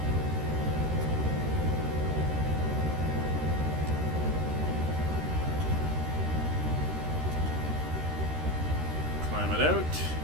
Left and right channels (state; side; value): late; left; 13 ms